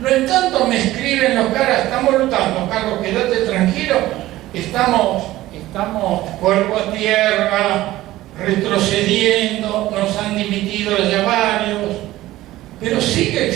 en tanto me escriben los caras, estamos luchando, Carlos, quédate tranquilo, estamos cuerpo a tierra, retrocediendo, nos han dimitido ya varios, pero sigue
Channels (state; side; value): quieter; left; 16.1 dB